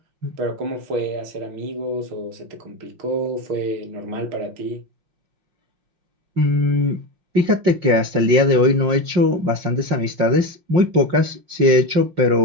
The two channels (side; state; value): left; late; 5.6 ms